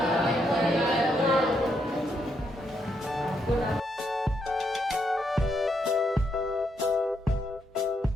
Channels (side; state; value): both; normal; correlation 0.78